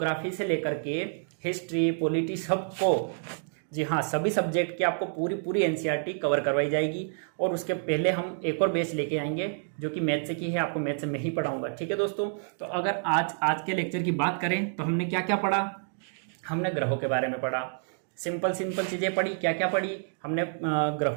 से लेकर के हिस्ट्री, पॉलिटी सबको, जी हाँ, सभी सब्जेक्ट की आपको पूरी एनसीईआरटी कवर करवाई जाएगी। और उसके पहले हम एक और बैच लेके आएंगे जो कि मैथ से की है, आपको मैथ से मैं ही पढ़ाऊंगा। ठीक है दोस्तों। तो अगर आज के लेक्चर की बात करें तो हमने क्या क्या पढ़ा? हमने ग्रहों के बारे में पढ़ा, सिंपल चीजें पढ़ी। क्या क्या पढ़ी हमने?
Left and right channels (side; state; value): left; silent; digital silence